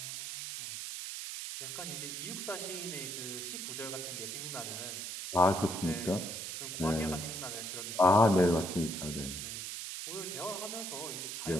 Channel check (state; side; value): noise; right; hiss, 6 dB below the sound